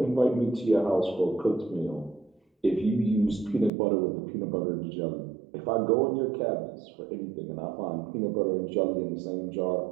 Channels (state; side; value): drops out; left; at 3.7 s